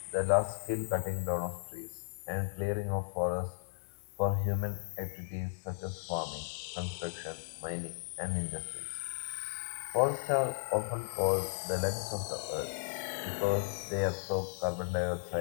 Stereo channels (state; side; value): silent; right; digital silence